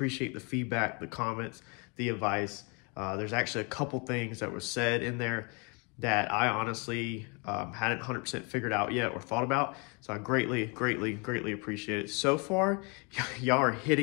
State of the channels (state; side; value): quieter; right; 32.2 dB